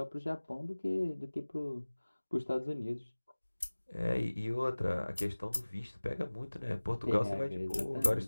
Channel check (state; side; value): inverted; both; correlation -1.00